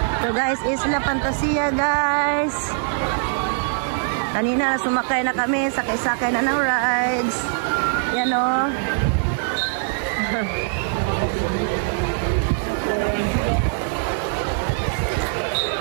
So guys, Isla Fantasia guys. Kanina sumakay na kami, sakay-sakay na ng rides. Yan o.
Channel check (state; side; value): silent; left; digital silence